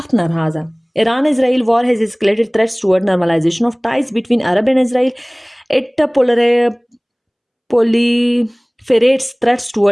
नाराज़ है। Iran Israel war has escalated threats toward normalisation of ties between Arab and Israel. It proliferates threats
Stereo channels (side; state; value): both; identical; correlation 1.00